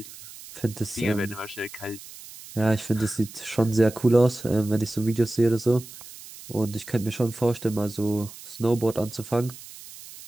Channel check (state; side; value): noise; right; hiss, 16 dB below the sound